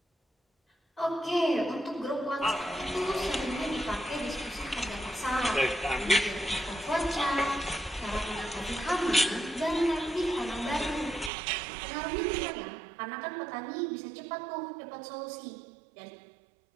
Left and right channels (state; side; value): drops out; left; at 11.3 s